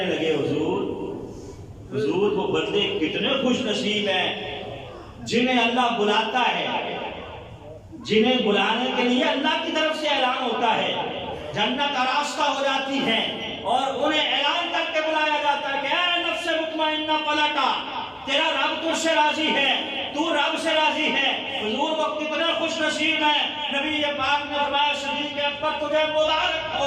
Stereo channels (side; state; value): both; identical; correlation 1.00